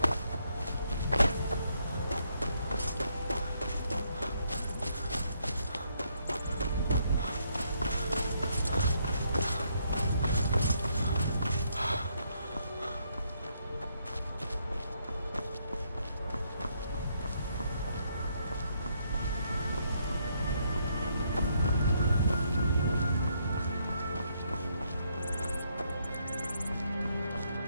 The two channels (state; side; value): inverted; both; correlation -0.73